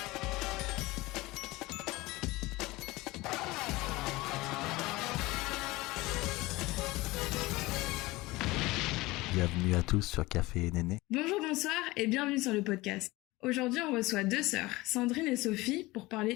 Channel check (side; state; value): right; quieter; 20.7 dB